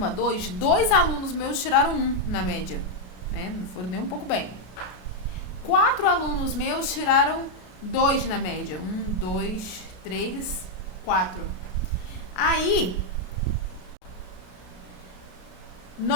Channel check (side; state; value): right; late; 33 ms